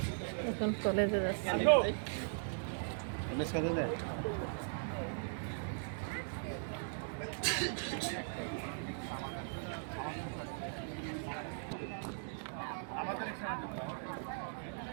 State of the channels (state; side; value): silent; left; digital silence